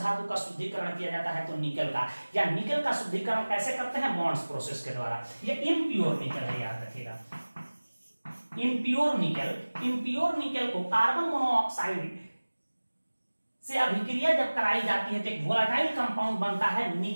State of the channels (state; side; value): inverted; both; correlation -1.00